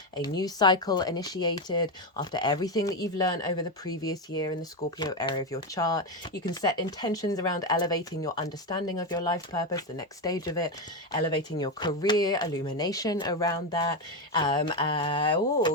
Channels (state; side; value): normal; both; correlation 0.11